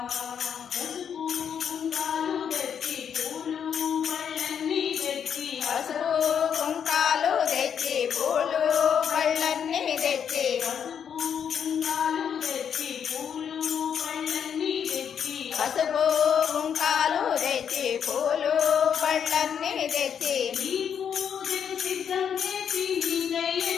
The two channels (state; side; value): quieter; right; 8.0 dB